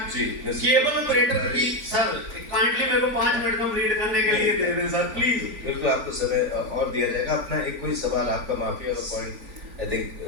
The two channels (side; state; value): left; late; 3.5 ms